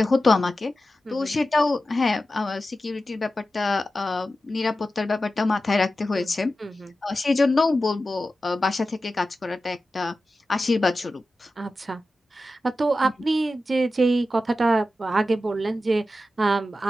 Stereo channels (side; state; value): both; normal; correlation 0.93